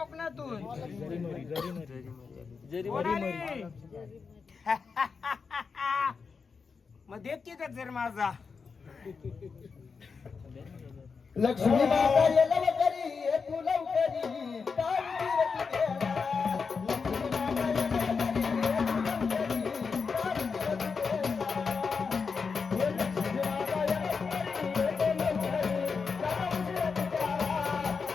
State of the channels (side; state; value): right; quieter; 5.3 dB